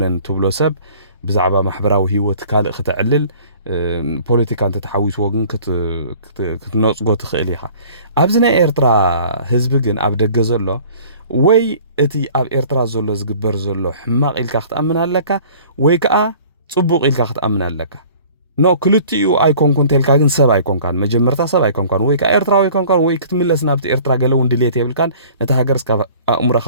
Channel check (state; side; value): inverted; both; correlation -0.49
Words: ትብሎ ሰብ ብዛዕባ ማሕበራዊ ህይወት ካልእ ክትዕልል ፖለቲካ እንተ ተሓዊስዎ ግን ክትነፅጎ ትኽእል ኢኻ ኣብዚ ናይ ኤርትራ ህዝቢ ግን ኣብ ደገ ዘሎ ወይ እቲ ኣብ ኤርትራ ዘሎ ዝግበር ዘሎ ሕማቕ ኢልካ ክትኣምን ኣለካ ወይ ከዓ ጽቡቕ ኢልካ ክትኣምን ኣለካ ኖ ክልቲኡ ኣይኮንኩን ተልካ ግን ሰብ ኣይኮንካን መጀመርታ ሰብ ኣይኮንካን ወይ ከዓ ኤርትራዊ ኣይኮንካን ወይ ክትምለስ ናብቲ ኤርትራ ገለ እውን ድሌት የብልካን ነቲ ሃገር እስካብ ኣእሙሮኻ